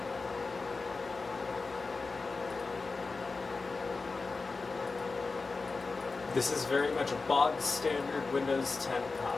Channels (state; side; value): quieter; right; 4.0 dB